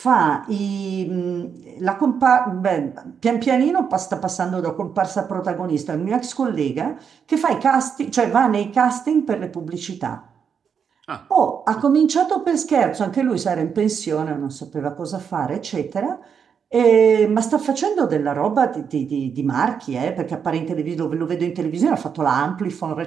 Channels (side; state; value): left; quieter; 7.0 dB